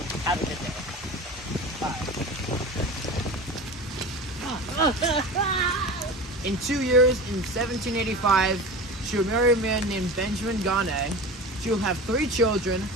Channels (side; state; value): both; normal; correlation 0.32